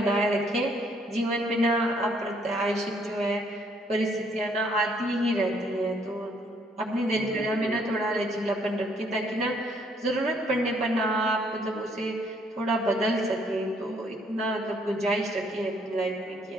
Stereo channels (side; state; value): both; normal; correlation 0.67